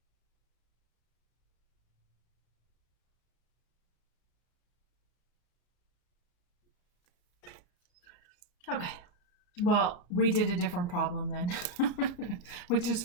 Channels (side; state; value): right; late; 34 ms